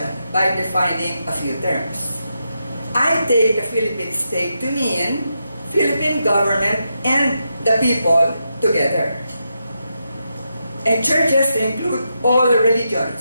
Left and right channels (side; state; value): both; inverted; correlation -0.85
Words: by defining a few terms. I take the Philippine state to mean Philippine government and the people together. And churches include all